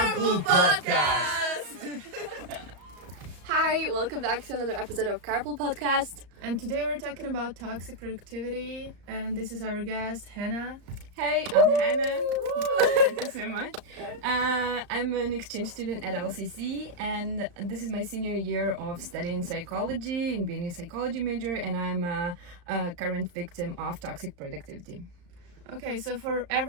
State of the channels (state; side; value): late; left; 34 ms